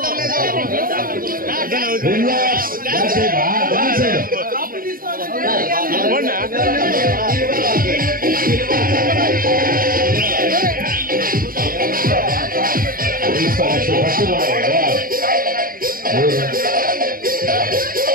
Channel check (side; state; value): left; late; 0.41 ms